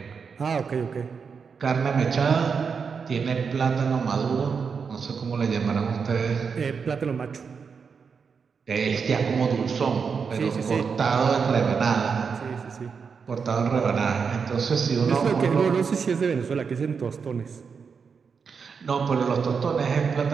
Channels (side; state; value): left; quieter; 5.8 dB